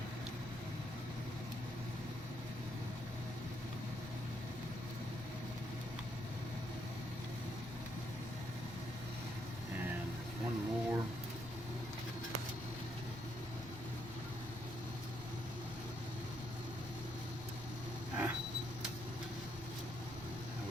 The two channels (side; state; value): both; normal; correlation 0.75